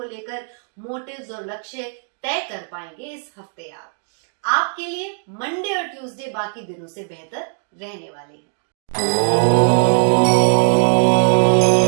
लेकर, मोटिव्स और लक्ष्य तय कर पाएंगे इस हफ्ते। आप आपके लिए मंडे और ट्यूसडे बाकी दिनों से बेहतर रहने वाले हैं।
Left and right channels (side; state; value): left; silent; 66 dB below the other